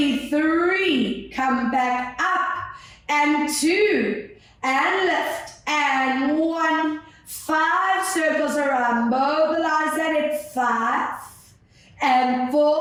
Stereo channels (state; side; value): identical; both; correlation 1.00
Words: 3, come back up, and 2, and lift, and 1, 5 circles around, mobilize that at 5, and